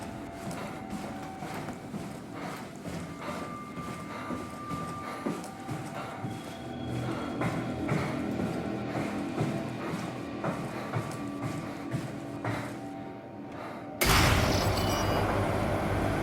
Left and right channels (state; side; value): identical; both; correlation 1.00